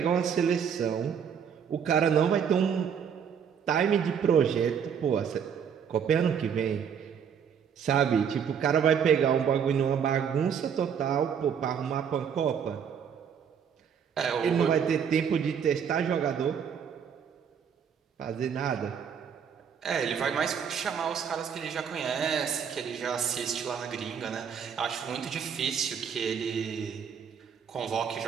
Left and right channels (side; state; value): left; quieter; 7.5 dB